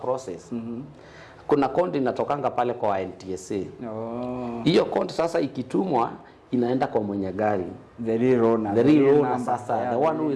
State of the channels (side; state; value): both; identical; correlation 1.00